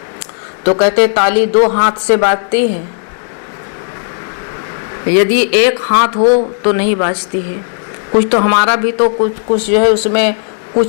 तो कहते ताली दो हाथ से बाजती है, यदि एक हाथ हो तो नहीं बाजती है। कुछ तो हमारा भी तो कुछ जो है उसमें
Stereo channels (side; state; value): right; silent; digital silence